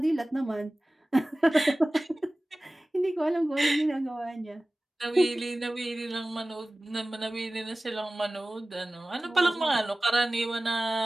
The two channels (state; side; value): normal; both; correlation 0.97